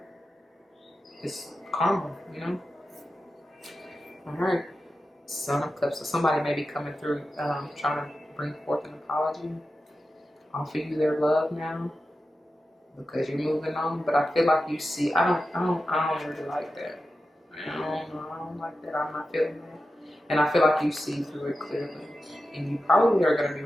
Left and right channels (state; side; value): normal; both; correlation 0.92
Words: It's karma, you know. All right, Son of Cups. So somebody may be coming through, trying to bring forth an apology, offer you their love now, because you're moving on. But I feel like you see, I don't really like that. I don't like that. I'm not feeling that. And I feel like you see through it clearly. And you probably are going to be